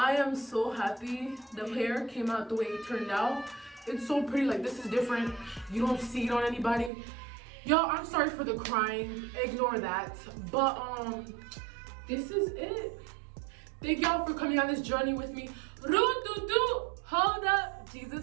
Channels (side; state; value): left; drops out; at 6.9 s